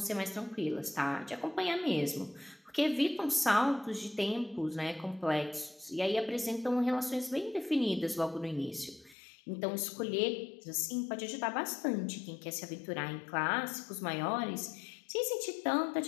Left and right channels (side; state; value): right; drops out; at 9.2 s